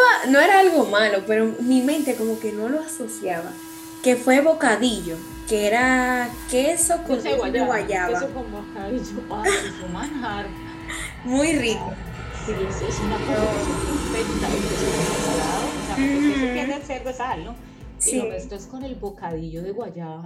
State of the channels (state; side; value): identical; both; correlation 1.00